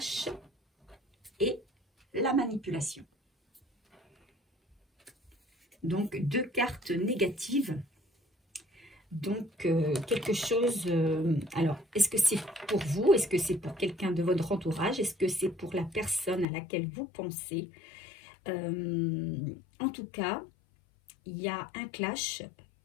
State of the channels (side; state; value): right; drops out; at 16.4 s